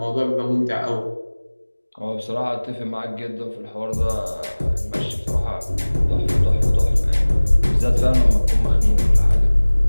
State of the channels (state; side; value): inverted; both; correlation -1.00